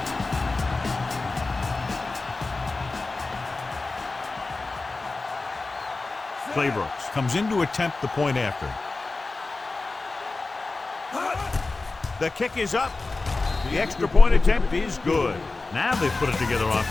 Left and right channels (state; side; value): quieter; right; 3.5 dB